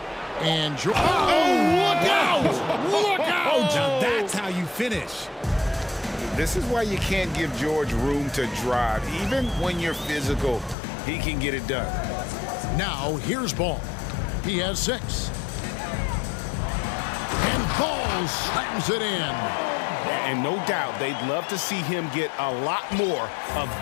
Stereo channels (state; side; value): drops out; right; at 10.8 s